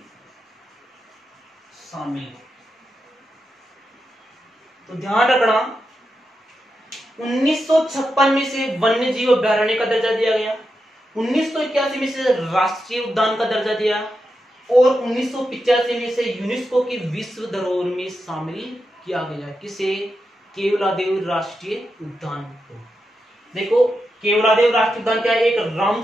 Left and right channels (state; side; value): normal; both; correlation 0.87